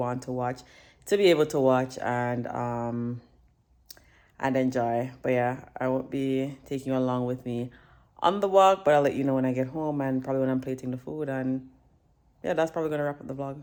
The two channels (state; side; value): identical; both; correlation 1.00